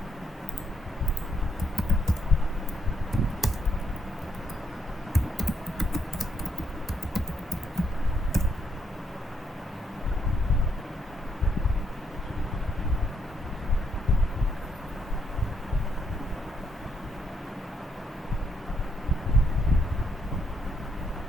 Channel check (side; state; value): both; normal; correlation 0.75